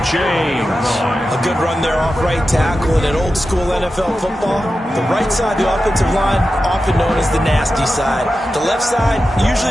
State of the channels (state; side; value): normal; both; correlation 0.92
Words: A good run there off right tackle in an old-school NFL football. The right side, the offensive line, often known as the nasty side. The left side,